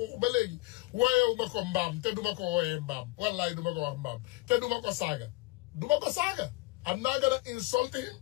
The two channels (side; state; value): right; quieter; 23.2 dB